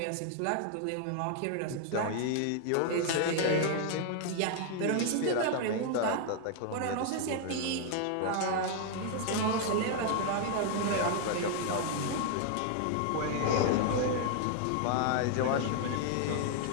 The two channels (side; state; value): both; different; correlation 0.00